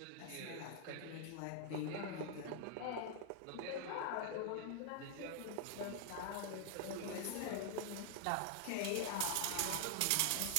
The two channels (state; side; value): different; both; correlation 0.00